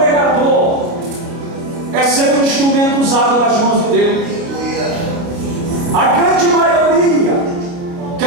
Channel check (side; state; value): left; late; 29 ms